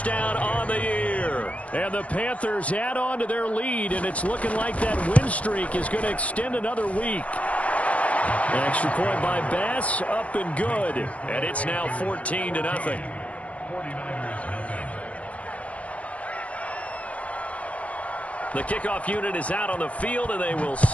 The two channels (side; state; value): right; late; 0.065 ms